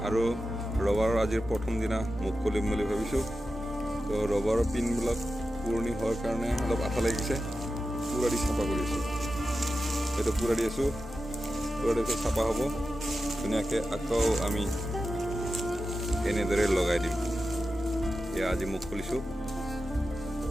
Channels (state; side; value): normal; both; correlation 0.92